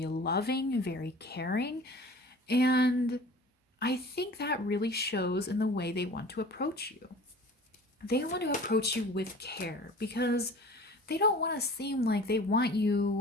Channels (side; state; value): both; normal; correlation 0.43